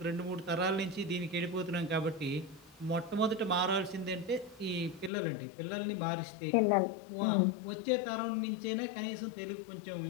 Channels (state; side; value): drops out; right; at 5.1 s